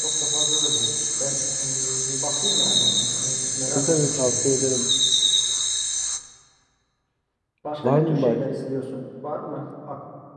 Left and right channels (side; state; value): both; identical; correlation 1.00